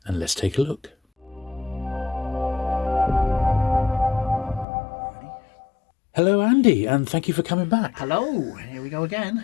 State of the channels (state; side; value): drops out; right; at 4.7 s